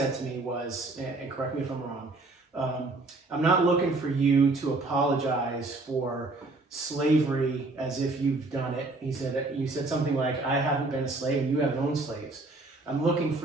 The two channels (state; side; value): quieter; left; 3.2 dB